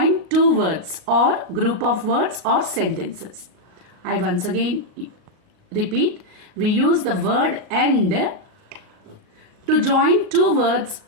two words or group of words or sentences. I once again repeat. We use the word and to join two words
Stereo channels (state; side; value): late; left; 38 ms